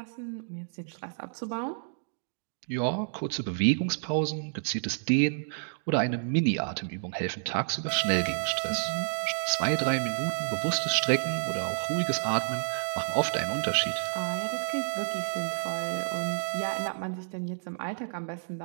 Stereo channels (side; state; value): left; silent; digital silence